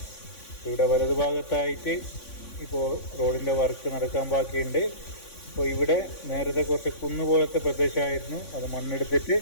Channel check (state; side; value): late; right; 3.5 ms